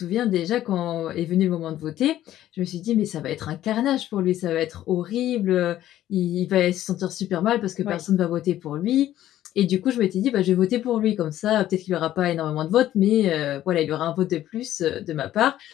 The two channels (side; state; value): right; quieter; 12.9 dB